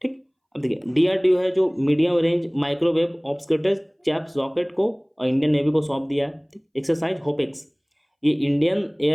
ठीक। अब देखिए DRDO है जो medium range microwave obscurants chaffs rocket को और इंडियन नेवी को सौंप दिया है। एक्सरसाइज होपेक्स ये इंडियन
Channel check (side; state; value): both; identical; correlation 1.00